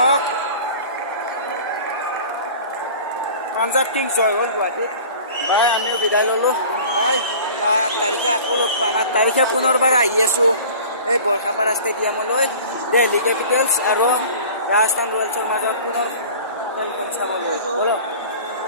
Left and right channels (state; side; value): inverted; both; correlation -0.42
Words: পাঞ্জাৱ কিংছ জয় হ'ল গুৱাহাটীত বাই আমি বিদায় ল'লোঁ বাই 8 তাৰিখে আকৌ লগ পাম 8 তাৰিখে পুনৰবাৰ আহি আছোঁ এই বৰখাপাৰা ষ্টেডিয়ামলৈ দিল্লী কেপিটেলছ আৰু ৰাজস্থান ৰয়েলছৰ মাজত পুনৰ খেলখন চাবলৈ ব'লক